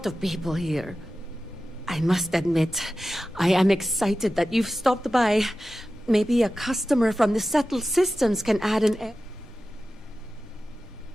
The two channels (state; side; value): normal; both; correlation 0.94